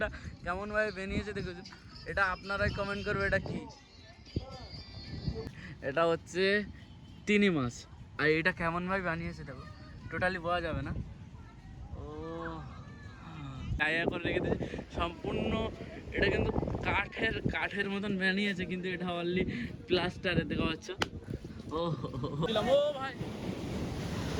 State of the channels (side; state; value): both; identical; correlation 1.00